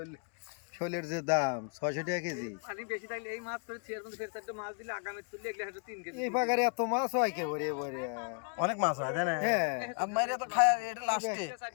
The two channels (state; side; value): quieter; right; 39.4 dB